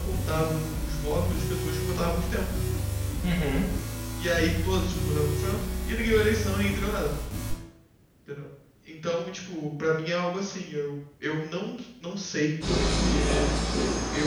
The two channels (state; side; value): identical; both; correlation 1.00